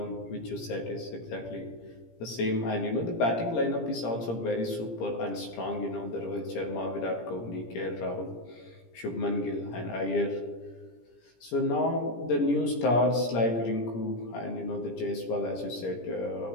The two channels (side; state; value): right; late; 17 ms